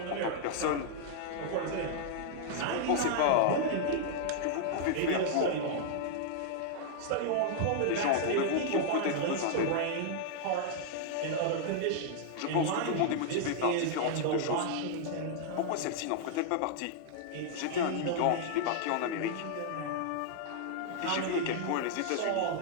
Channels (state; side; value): different; both; correlation -0.01